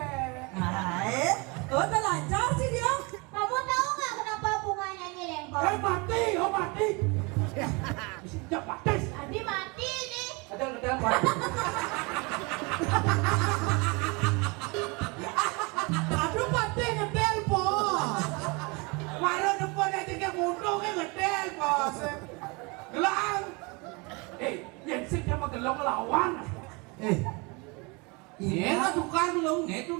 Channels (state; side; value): quieter; left; 28.5 dB